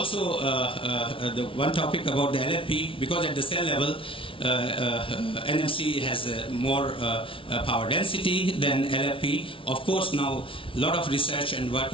the one topic about the LFP, because at the cell level NMC has more power density than LFP. Of course, now a lot of research and work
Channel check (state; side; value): late; right; 0.25 ms